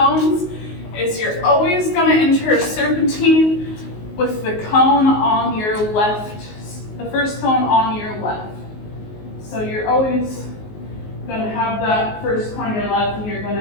is you're always going to enter a serpentine with the cone on your left, the first cone on your left. So you're always going to have that first cone on your left, and you're going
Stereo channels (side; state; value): right; late; 19 ms